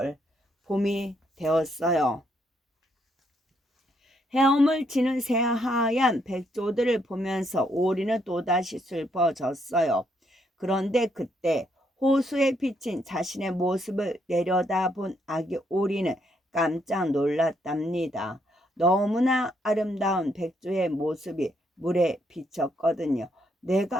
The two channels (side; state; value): both; normal; correlation 0.74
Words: 봄이 되었어요. 헤엄을 치는 새하얀 백조들을 보면서 오리는 또다시 슬퍼졌어요. 그런데 그때 호수에 비친 자신의 모습을 내려다본 아기 오리는 깜짝 놀랐답니다. 너무나 아름다운 백조의 모습이 물에 비쳤거든요.